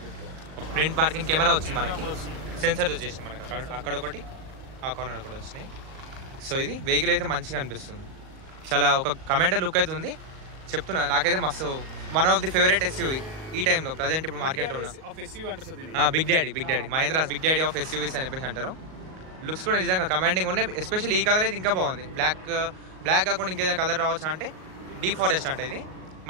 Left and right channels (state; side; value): late; left; 38 ms